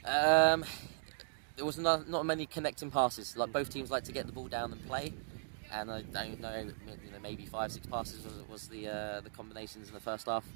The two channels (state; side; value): silent; left; digital silence